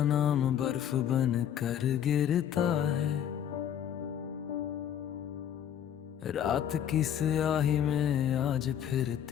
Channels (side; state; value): right; quieter; 9.6 dB